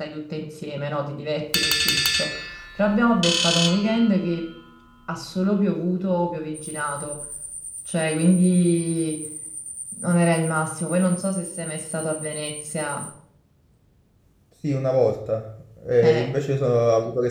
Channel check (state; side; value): identical; both; correlation 1.00